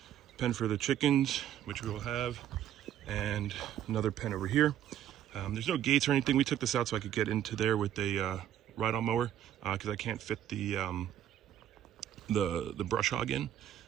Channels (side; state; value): left; quieter; 11.1 dB